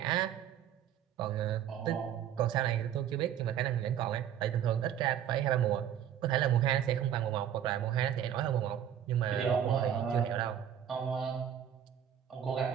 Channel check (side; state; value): left; quieter; 9.7 dB